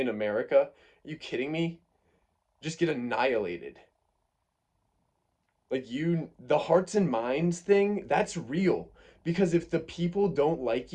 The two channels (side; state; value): both; identical; correlation 1.00